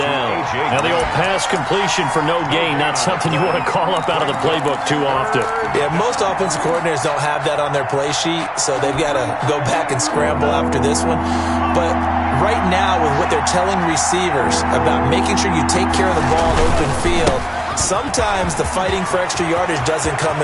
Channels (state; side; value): identical; both; correlation 1.00